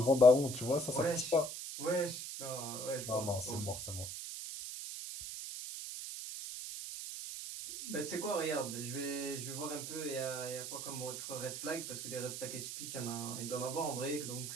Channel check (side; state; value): right; noise; hiss, 6 dB below the sound